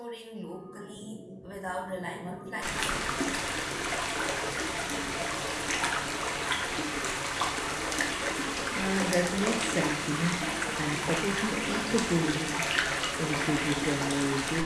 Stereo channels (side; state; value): both; identical; correlation 1.00